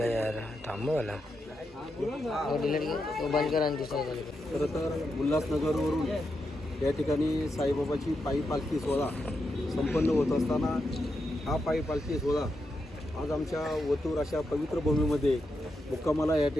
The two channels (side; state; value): both; normal; correlation 0.85